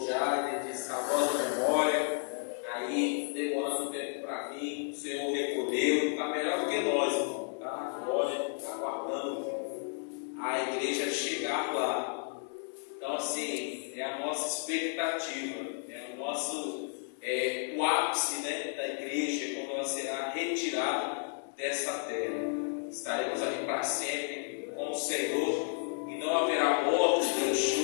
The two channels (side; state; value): right; silent; 56 dB below the other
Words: Jade, de saudosa memória, aí demorando um tempo para vir, o Senhor recolheu, está melhor do que nós, irmão, tá? Olha, está aguardando a igreja chegar lá. Então, assim, é a nossa expectativa, é o nosso, o ápice, né, da igreja, quando ela será retirada dessa terra. Estaremos ali para sempre com o Senhor e não haverá morte, nem